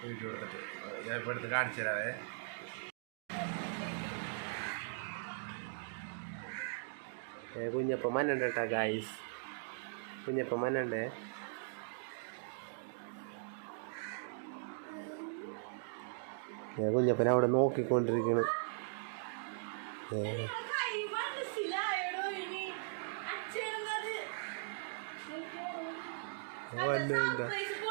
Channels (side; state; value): left; silent; digital silence